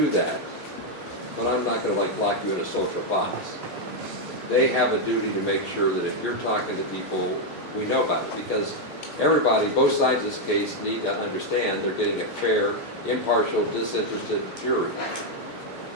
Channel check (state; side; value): late; right; 4.1 ms